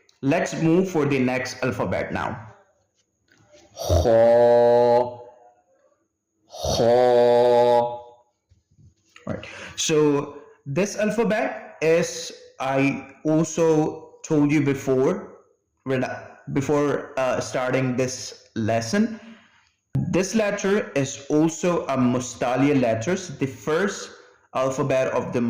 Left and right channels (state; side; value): identical; both; correlation 1.00